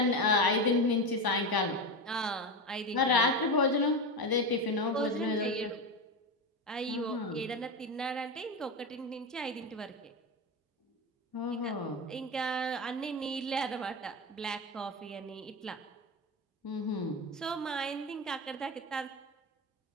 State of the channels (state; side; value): normal; both; correlation 0.18